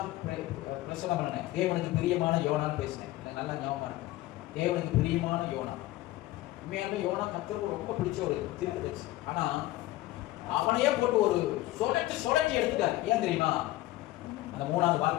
பிரசங்கம் பண்ணேன். தேவனுக்கு பிரியமான யோனான்னு பேசினேன். நல்லா ஞாபகமா இருக்கு. தேவனுக்கு பிரியமான யோனா. உண்மையாலுமே யோனா கர்த்தருக்கு ரொம்ப பிடிச்ச ஒரு தீர்க்கதரிசி. ஆனா அவனையே போட்டு ஒரு சொலட்டி எடுத்துட்டாரு. ஏன் தெரியுமா? அந்த 3வது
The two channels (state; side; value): quieter; right; 17.0 dB